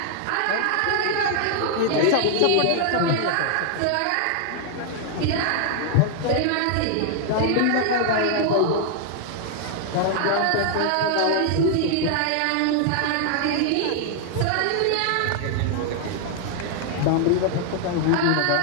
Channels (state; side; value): different; both; correlation 0.00